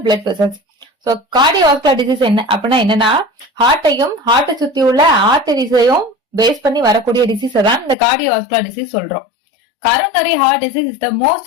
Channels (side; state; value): right; drops out; at 8.0 s